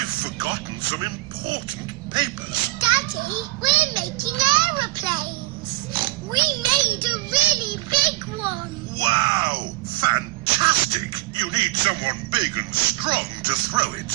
forgotten some important papers. Daddy, we're making aeroplanes. We made a really big one. Wow, fantastic. You need someone big and strong to throw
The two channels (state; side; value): quieter; left; 20.0 dB